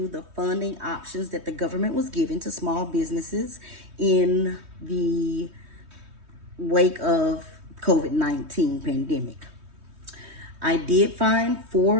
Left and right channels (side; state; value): left; late; 3.2 ms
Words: the funding options that the government was giving to small businesses in the wake of COVID-19 pandemic. I did find